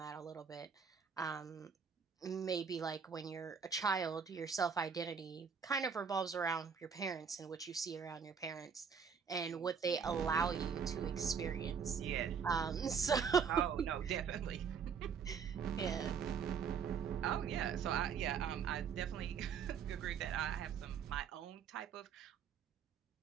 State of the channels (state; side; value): quieter; left; 6.5 dB